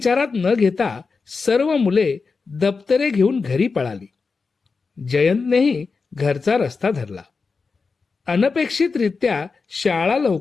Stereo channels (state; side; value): quieter; right; 4.6 dB